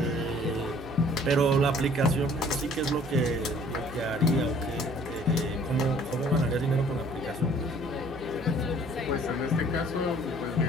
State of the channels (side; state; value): right; noise; hum, 16 dB below the sound